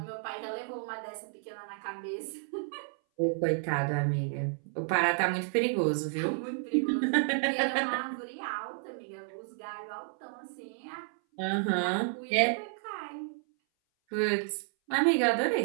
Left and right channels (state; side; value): silent; left; 57 dB below the other